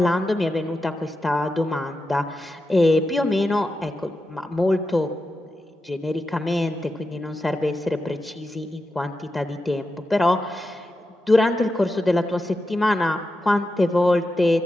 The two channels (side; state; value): both; normal; correlation 0.89